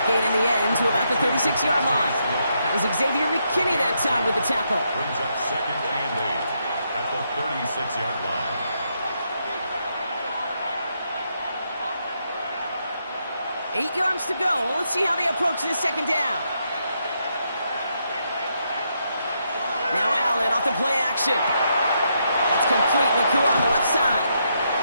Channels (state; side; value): inverted; both; correlation -0.79